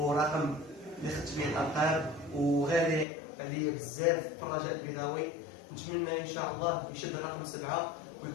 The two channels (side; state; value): right; drops out; at 3.1 s